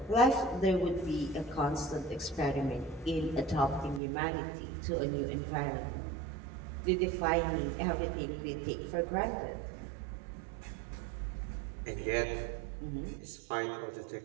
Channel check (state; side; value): drops out; left; at 4.0 s